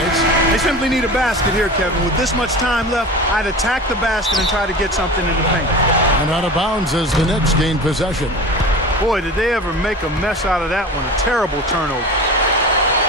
They simply need a basket here, Kevin. With this much time left, I'd attack the basket and try to get something in the paint. And out of bounds as the Knicks gain possession. Boy, did they ever make a mess out of that one. A terrible turnover.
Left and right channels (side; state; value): both; normal; correlation 0.34